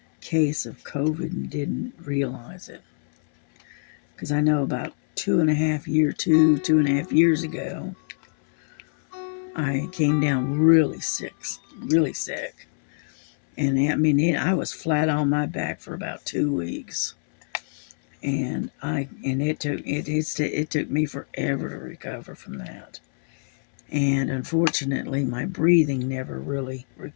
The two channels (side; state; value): right; silent; 61 dB below the other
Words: case of COVID and didn't realize it. Because I know about 2.5 years ago, I came down really sick. And I mean, I was flat on my back for about 2 weeks. And it took me forever to recover from that. And unfortunately, my breathing never really